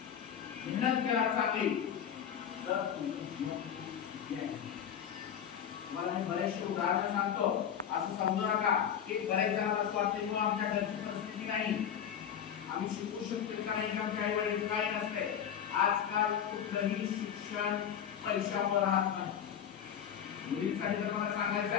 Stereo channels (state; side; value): quieter; right; 8.7 dB